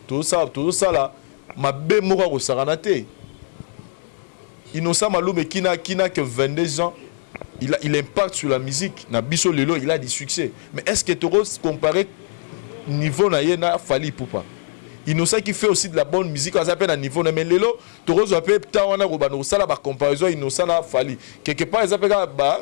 Tout ça là ma bé mora ko saranate. Innocent Baloumé qui n'a que 22 ans, il impacte sur la musique. Na biso lelo il a du succès. Mais est-ce que tu oses comparer niveau na yena fali poupa? Innocent qui fait aussi de la bonne musique, on s'appelle à niveau, mais lelo, Torozo appelle Tawana Robano, ça la comparaison, Innocent a fallu. Quelque part, ils appellent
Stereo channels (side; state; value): right; silent; 65 dB below the other